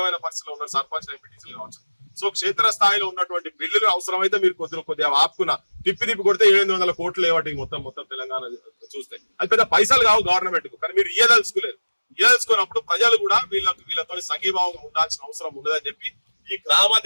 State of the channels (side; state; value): both; inverted; correlation -1.00